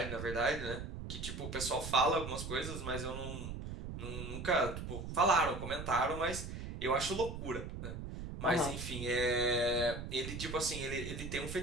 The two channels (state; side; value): noise; right; rumble, 7 dB below the sound